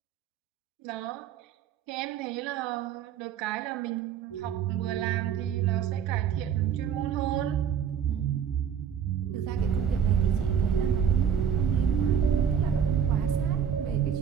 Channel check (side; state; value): left; quieter; 8.1 dB